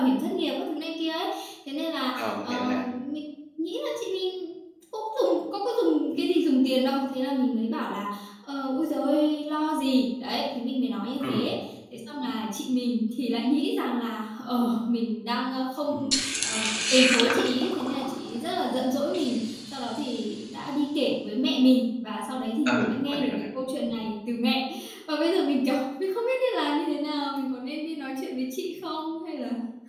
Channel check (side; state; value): both; identical; correlation 1.00